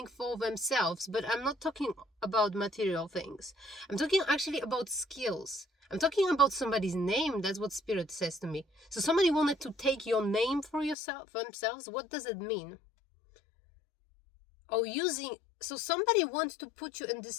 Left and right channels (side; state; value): right; drops out; at 11.0 s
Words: for themselves. But I'm not talking about material things. I'm talking actually about skills. I'm talking about somebody's name. That's what Spirit says to me. So somebody wanted to take your name for themselves. What does it mean? Oh, so somebody wants to put you in